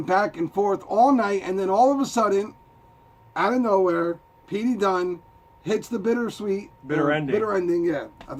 back and forth all night, and then all of a sudden, out of nowhere, P.D. Dunne hits the bitter ending. Bitter ending, yeah. I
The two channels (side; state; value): both; identical; correlation 1.00